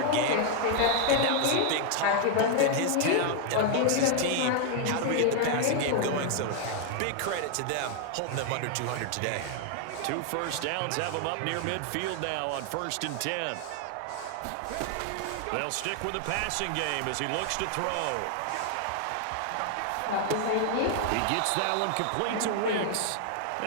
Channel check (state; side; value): different; both; correlation 0.00